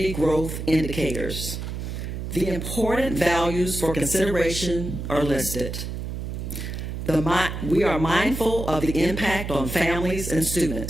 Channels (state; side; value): noise; right; hum, 6 dB below the sound